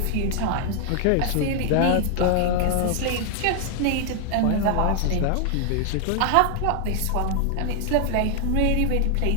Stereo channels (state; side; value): different; both; correlation 0.00